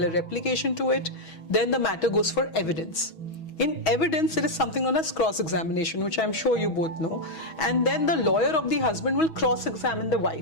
a replication to it, then the matter goes for evidence. In evidence, there is something known as cross-examination, which I'm sure you both know. And then the lawyer of the husband will cross-examine the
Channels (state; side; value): late; right; 6.2 ms